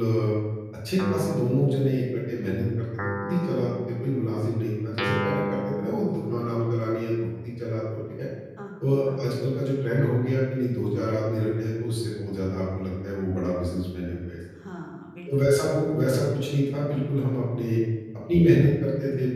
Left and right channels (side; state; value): both; identical; correlation 1.00